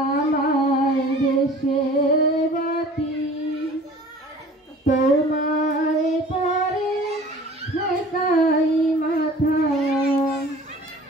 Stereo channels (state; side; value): normal; both; correlation 0.46